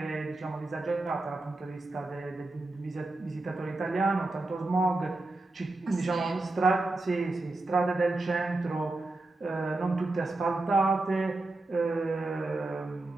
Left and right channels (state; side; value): quieter; left; 3.0 dB